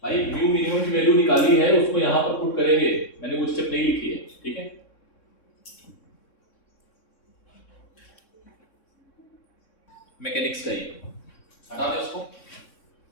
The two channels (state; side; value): late; right; 3.6 ms